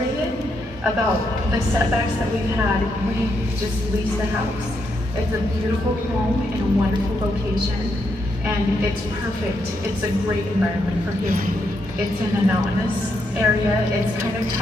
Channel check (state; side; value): normal; both; correlation 0.79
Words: about the setbacks that we've had, we just leased a house. It's a beautiful home in a wonderful location, and it's perfect. It's a great environment for healing. It's in a mountainous area. It's kind of